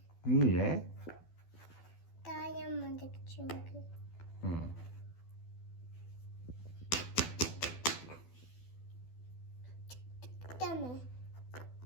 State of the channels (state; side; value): late; right; 12 ms